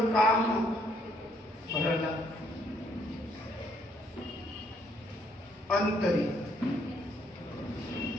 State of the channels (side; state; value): both; normal; correlation 0.69